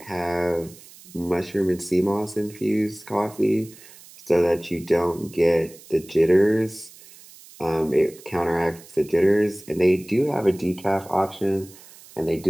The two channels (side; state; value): right; noise; hiss, 21 dB below the sound